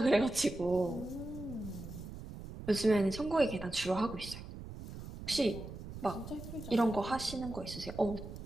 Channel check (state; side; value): noise; right; rumble, 11 dB below the sound